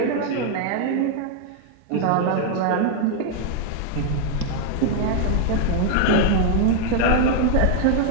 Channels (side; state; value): both; different; correlation 0.00